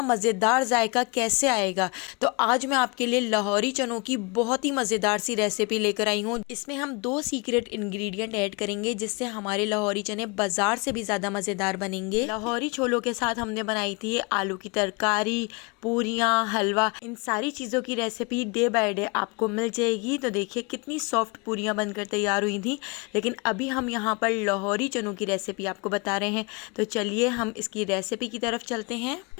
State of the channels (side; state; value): right; quieter; 29.3 dB